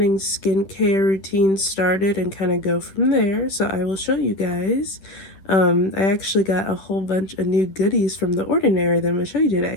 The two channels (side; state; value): right; late; 10 ms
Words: skincare routine started and kind of go from there. So I will show you guys. I actually got a whole bunch of new goodies from The Ordinary that I'm gonna show you